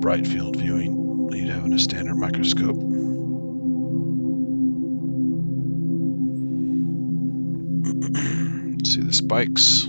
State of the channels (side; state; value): both; inverted; correlation -1.00